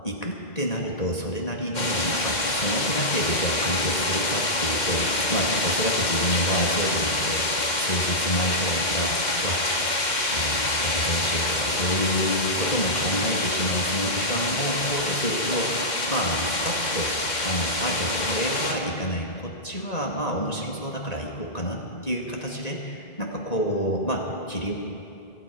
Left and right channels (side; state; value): right; late; 2.1 ms